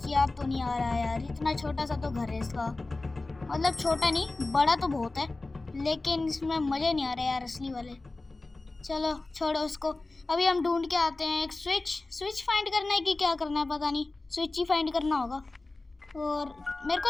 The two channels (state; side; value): quieter; right; 3.2 dB